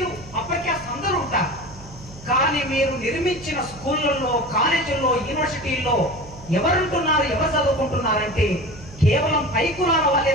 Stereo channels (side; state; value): right; noise; hum, 18 dB below the sound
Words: అప్పర్ క్యాస్ట్ అందరూ ఉంటారు. కానీ మీరు నిర్మించిన స్కూళ్లలో, కాలేజీల్లో, యూనివర్సిటీల్లో ఎవరుంటున్నారు, ఎవరు చదువుకుంటున్నారంటే కేవలం పై కులాల వాళ్ళే